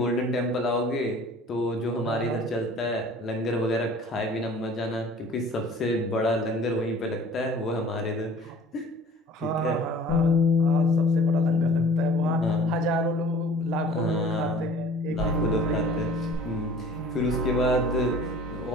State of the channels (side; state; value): both; normal; correlation 0.47